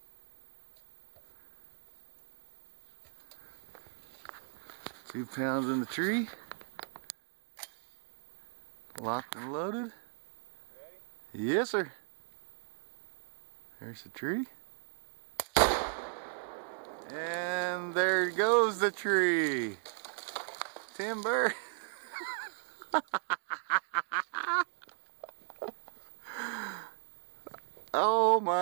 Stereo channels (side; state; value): left; silent; digital silence